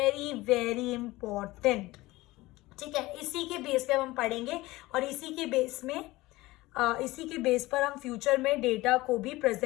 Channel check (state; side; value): quieter; right; 19.5 dB